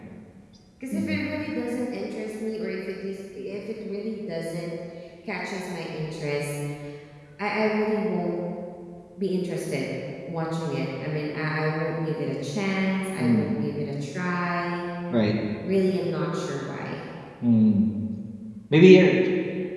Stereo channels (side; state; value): both; identical; correlation 1.00